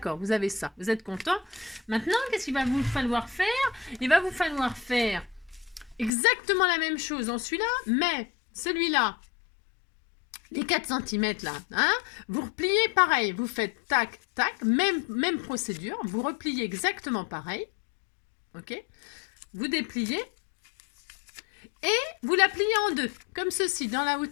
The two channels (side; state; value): right; drops out; at 6.1 s